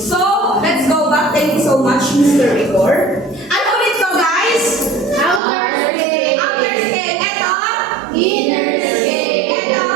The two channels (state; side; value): drops out; left; at 5.4 s